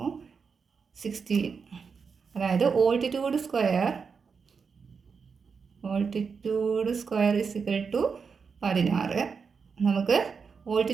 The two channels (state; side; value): quieter; left; 5.6 dB